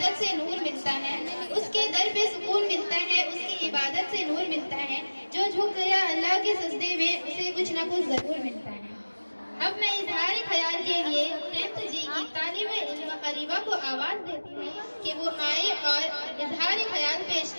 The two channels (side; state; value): both; inverted; correlation -1.00